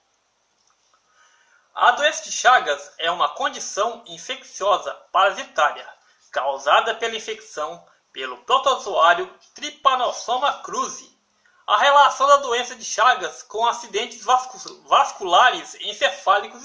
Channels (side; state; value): both; identical; correlation 1.00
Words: A doença de Chagas é uma condição infecciosa parasitária causada pela infecção pelo protozoário Trypanosoma cruzi. A relação da doença de Chagas com acidentes vasculares encefálicos